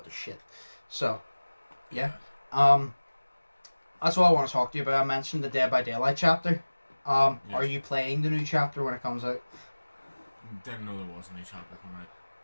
they're shit. So, yeah. That's what I want to talk to you about. I mentioned the Dead by Daylight chapter. Yes. Are you playing the new chapter when it comes out? Didn't know there was a new chapter coming out.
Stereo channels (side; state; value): both; inverted; correlation -1.00